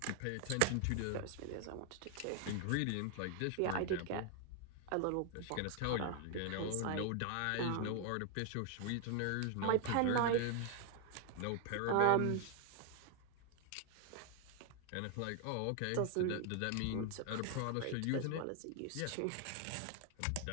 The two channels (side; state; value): both; different; correlation 0.00